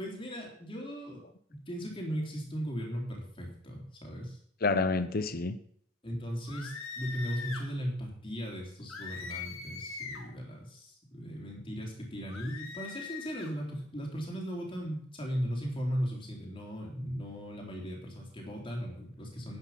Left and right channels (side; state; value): both; normal; correlation 0.62